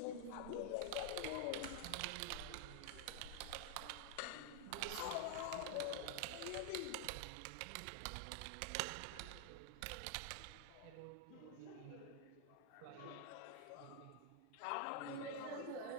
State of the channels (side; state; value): both; different; correlation 0.00